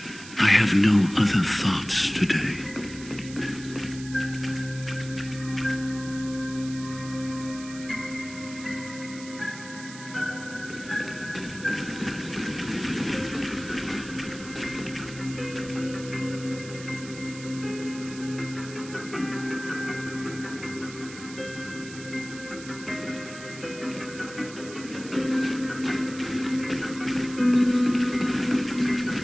I have no other thoughts today.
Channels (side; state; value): right; noise; hiss, 14 dB below the sound